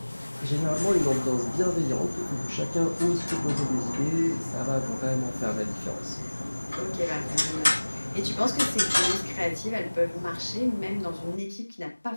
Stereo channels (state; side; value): inverted; both; correlation -1.00